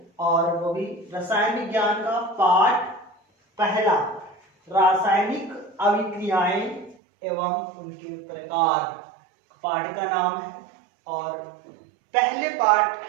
और वो भी रसायन विज्ञान का पाठ पहला, रासायनिक अभिक्रियाएं एवं उनके प्रकार, पाठ का नाम है। और पहले पाठ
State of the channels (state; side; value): drops out; left; at 7.0 s